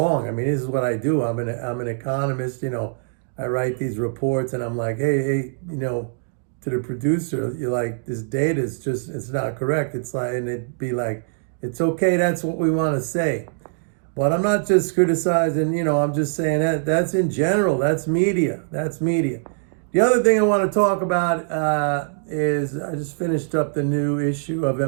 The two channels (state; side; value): silent; left; digital silence